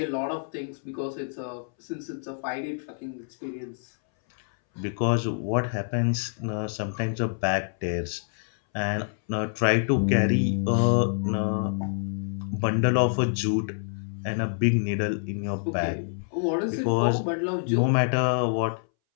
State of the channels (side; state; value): right; silent; 60 dB below the other